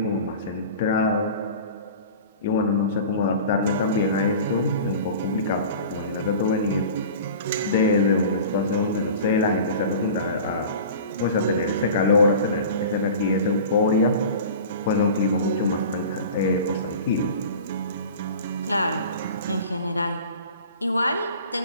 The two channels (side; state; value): both; inverted; correlation -0.38